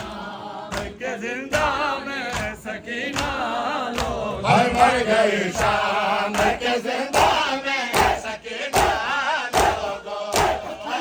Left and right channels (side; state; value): both; identical; correlation 1.00